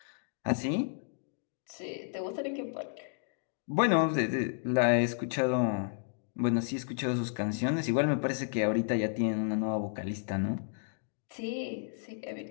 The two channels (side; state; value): right; silent; digital silence